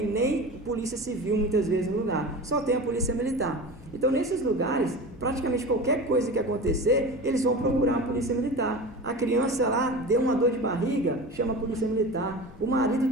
nem polícia civil muitas vezes no lugar, só tem a polícia militar. Então nesses lugares, praticamente qualquer coisa que acontecer, eles vão procurar a polícia militar. A criança lá deu uma dor de barriga, chama a polícia militar. O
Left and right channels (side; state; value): both; normal; correlation 0.31